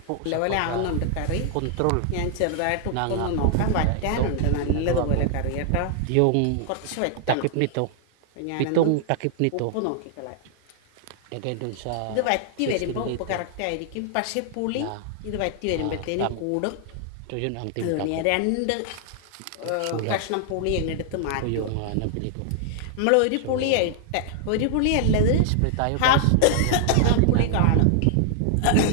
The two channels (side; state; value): both; different; correlation 0.00